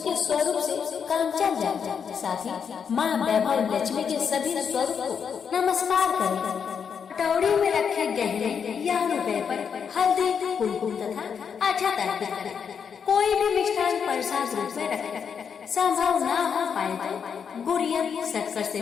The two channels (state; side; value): quieter; right; 6.9 dB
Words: स्वरूप से काम चल जाए। साथ ही माँ वैभव लक्ष्मी के सभी स्वरूप को नमस्कार करें। कटोरी में रखे गहने या रुपए पर हल्दी, कुमकुम तथा अक्षत अर्पित करें। कोई भी मिष्ठान प्रसाद रूप में रखें। संभव न हो पाए तो गुड़िया शक्कर से